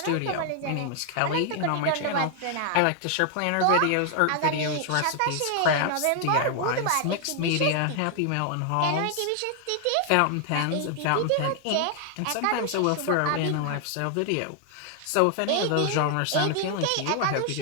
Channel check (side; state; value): both; different; correlation 0.00